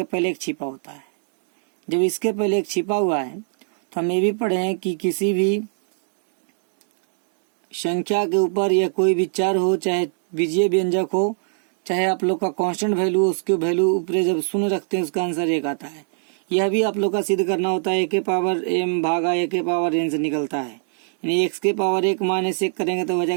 पहले एक छिपा होता है। जब इसके पहले एक छिपा हुआ है तो हम ये भी पढ़े हैं कि किसी भी संख्या के ऊपर या कोई भी चर हो, चाहे बीजीय व्यंजक हो, चाहे आप लोग का कांस्टेंट वैल्यू, उसके वैल्यू ऊपर जब शून्य रखते हैं उसका आंसर एक आता है। यह भी आप लोग का सिद्ध करना होता है। ए के पावर एम भागा ए के पावर एन से निकलता है, यानी एक्स के पावर 1 माइनस 1 करेंगे तो हो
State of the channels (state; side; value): silent; left; digital silence